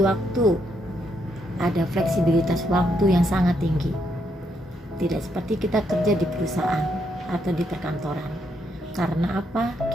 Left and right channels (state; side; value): normal; both; correlation 0.77